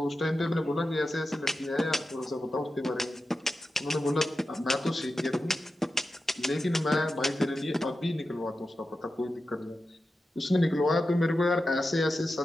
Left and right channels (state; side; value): normal; both; correlation 0.91